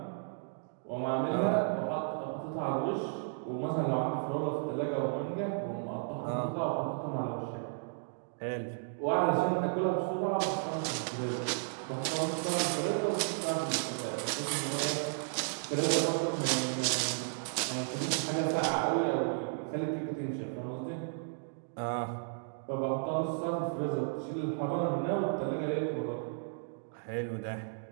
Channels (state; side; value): silent; left; digital silence